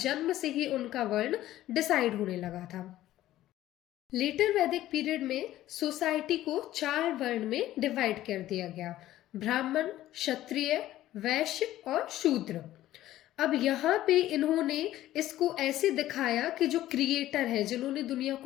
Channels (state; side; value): quieter; right; 14.3 dB